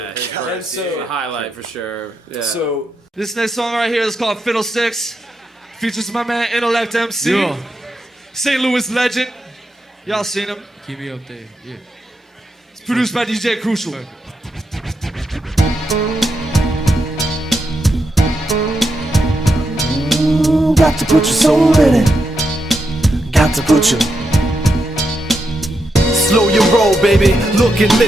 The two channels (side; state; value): both; normal; correlation 0.84